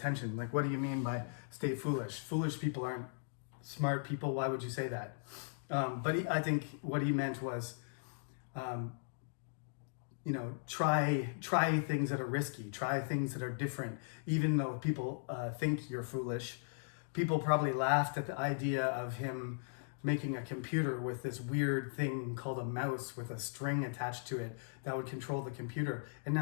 Like, what do you mean by stay foolish? Foolish people aren't smart people. Why would you say that? I think what he meant was, try things that are risky, try things that are different. Even though people think you're foolish, people probably laughed at the idea of him making a computer with this weird thing called a mouse with a string attached to it that would control the computer. And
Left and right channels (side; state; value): right; silent; digital silence